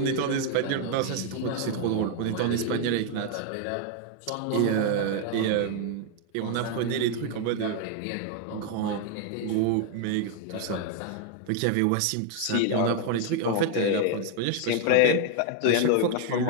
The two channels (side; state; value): both; different; correlation 0.00